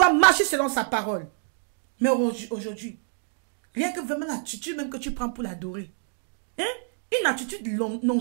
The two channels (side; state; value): left; silent; 57 dB below the other